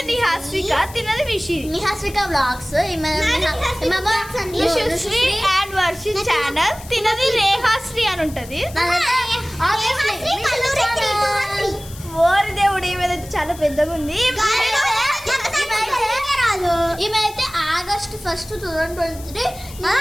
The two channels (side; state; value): left; noise; hiss, 18 dB below the sound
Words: నిహాస్విక, తినది నిహాస్విక వ్లాగ్స్. అండ్ వర్షి ఛానల్, తినది రేహాశ్రీ అని ఉంటది. ఓరి దేవుడు, ఈమెదైతే చాలా పెద్దగా ఉంది. ఈమెయితే ఆగస్ట్ 1, 2023